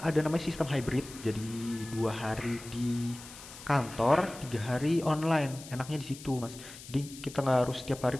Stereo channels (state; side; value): noise; left; hiss, 15 dB below the sound